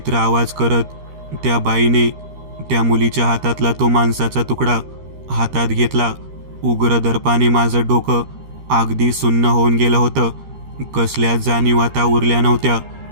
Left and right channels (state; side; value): late; left; 13 ms